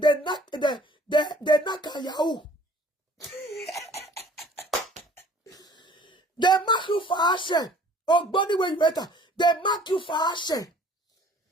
naka yahoo. They mark you for action. Oh, body when you enter. They mark you for action.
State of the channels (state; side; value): normal; both; correlation 0.53